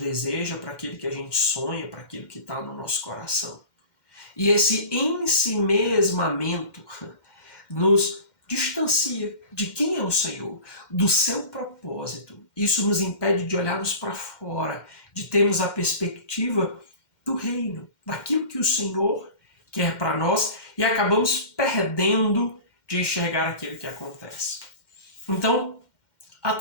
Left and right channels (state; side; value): late; right; 2.1 ms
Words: para aquilo que a gente sonha, para aquilo que está no nosso coração. E esse ensimesmamento nos distancia de quem é o Senhor, do seu propósito. Isso nos impede de olharmos para fora, de termos a perspectiva do reino, daquilo que o Senhor quer para nós, e acabamos perdendo de enxergar aquilo que acontece. Então, há